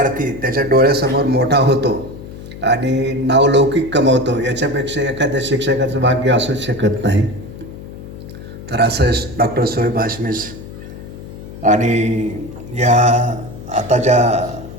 त्याच्या डोळ्यासमोर मोठा होतो आणि नावलौकिक कमवतो, याच्यापेक्षा एखाद्या शिक्षकाचं भाग्य असूच शकत नाही. तर असं डॉक्टर शोएब हाशमी आणि या आता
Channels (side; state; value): left; noise; hum, 13 dB below the sound